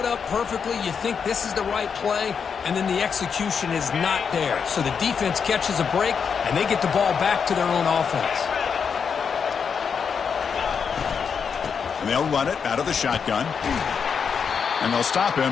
up perfectly. You think this is the right play, and then the execution is not there. So the defense catches a break, and they get the ball back to their own offense. And they'll run it out of the shotgun. And they'll stop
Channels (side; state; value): right; quieter; 6.4 dB